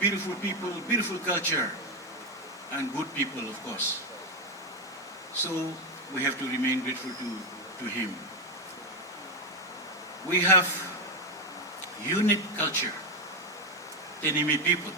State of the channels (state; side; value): normal; both; correlation 0.07